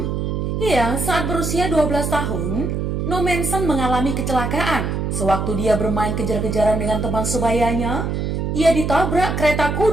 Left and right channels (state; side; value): noise; right; hum, 1 dB below the sound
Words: saat berusia 12 tahun, Nommensen mengalami kecelakaan. Sewaktu dia bermain kejar-kejaran dengan teman sebayanya, ia ditabrak kereta